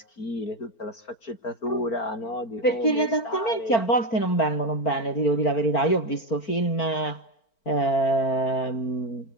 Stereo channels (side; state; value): right; late; 4.4 ms